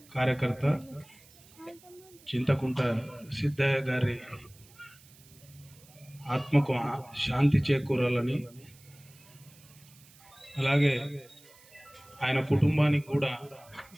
కార్యకర్త చింతకుంట సిద్ధయ్య గారి ఆత్మకు శాంతి చేకూరాలని, అలాగే ఆయన కుటుంబానికి కూడా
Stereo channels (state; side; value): noise; right; hiss, 25 dB below the sound